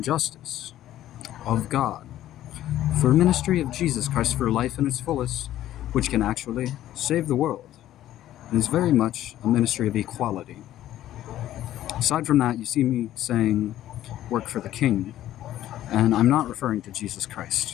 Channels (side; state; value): right; quieter; 13.1 dB